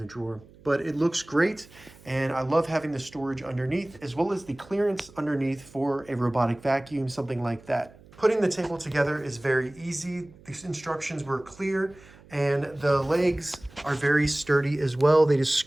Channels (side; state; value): right; noise; hum, 24 dB below the sound